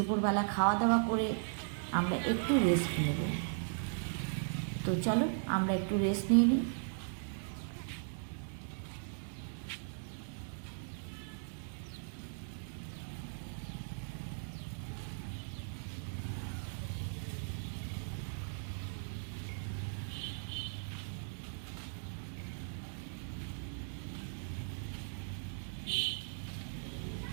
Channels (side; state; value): left; silent; digital silence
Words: খাওয়া দাওয়া করে আমরা একটু রেস্ট নেব। তো চলো আমরা একটু রেস্ট নিয়ে নিই।